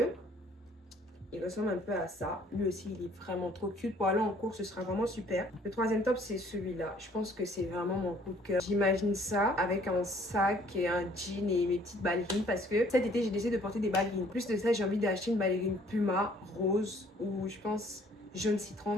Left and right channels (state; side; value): normal; both; correlation 0.59